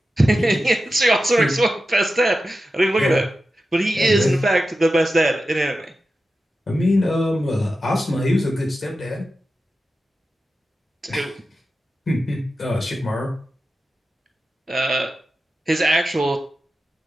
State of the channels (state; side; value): normal; both; correlation 0.92